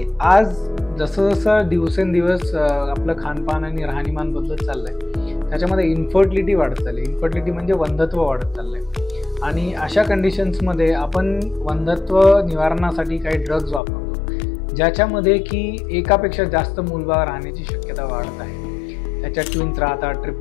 आज जसं दिवसेंदिवस आपलं खानपान आणि राहणीमान बदलत चाललं आहे, त्याच्यामध्ये इन्फर्टिलिटी वाढत चालली आहे। इन्फर्टिलिटी म्हणजे वंध्यत्व वाढत चाललं आहे आणि अशा कंडिशन्समध्ये आपण वंध्यत्व निवारणासाठी काही ड्रग्ज वापरतो, ज्याच्यामध्ये की एकापेक्षा जास्त मूलबाळ राहण्याची शक्यता वाढत आहे। त्याच्यात ट्विन्स राहतात,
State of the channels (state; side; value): drops out; right; at 13.8 s